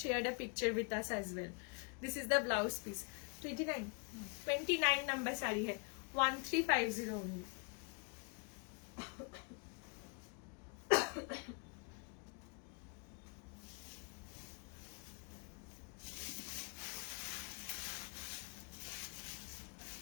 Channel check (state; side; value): quieter; right; 36.2 dB